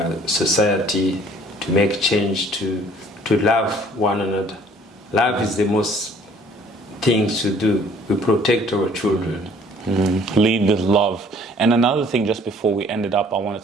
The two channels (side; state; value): both; normal; correlation 0.56